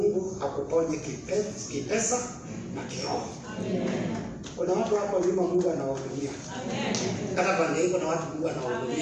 akuponye kipesa na kiroho. Kuna watu hapo nyuma Mungu anawahudumia. Hata pande hiko na watu Mungu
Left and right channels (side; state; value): both; identical; correlation 1.00